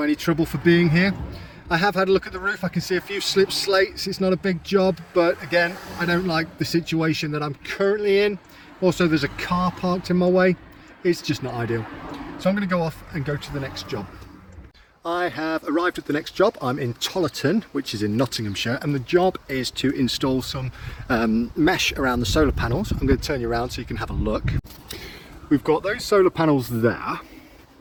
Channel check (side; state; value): both; identical; correlation 1.00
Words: any trouble for being here. I have had a look at the roof. I can see a few slip slates. It's not a big job, but again, I don't like the situation that I'm currently in. Also, there's a car parked in my way. It's just not ideal. So I'm going to go off and go to the next job. I have arrived at the next job. I'm in Tollerton, which is in Nottinghamshire, and the job is to install some mesh around the solar panels. I'm going to turn you around so you can have a look. We've got those solar panels there,